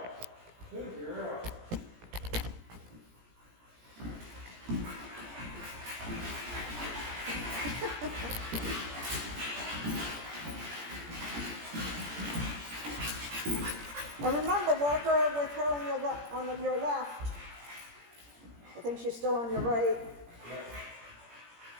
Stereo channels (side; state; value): left; late; 17 ms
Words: Good girl. And remember, work her with her on your left. I think she's still on your right. Yep.